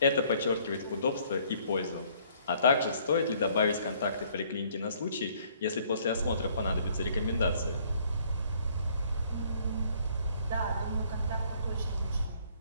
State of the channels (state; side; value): inverted; both; correlation -0.62